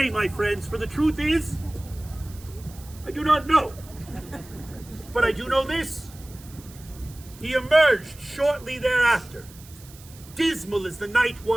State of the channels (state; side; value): noise; right; hiss, 21 dB below the sound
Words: my friends, for the truth is, I do not know. But I do know this. He emerged shortly thereafter, dismal as the night